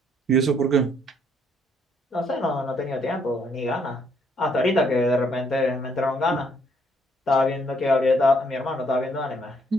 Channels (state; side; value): normal; both; correlation 0.68